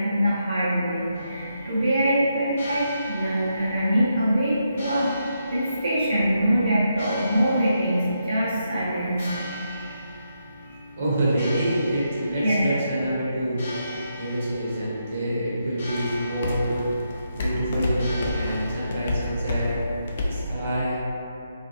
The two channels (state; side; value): inverted; both; correlation -0.81